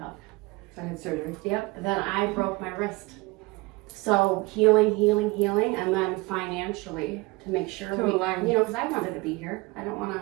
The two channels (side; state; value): left; quieter; 24.2 dB